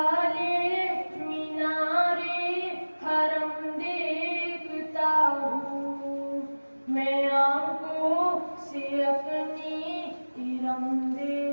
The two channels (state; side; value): inverted; both; correlation -1.00